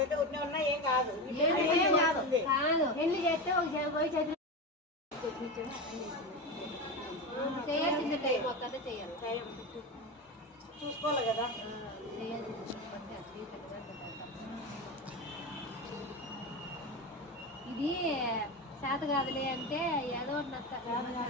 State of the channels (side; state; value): both; normal; correlation 0.20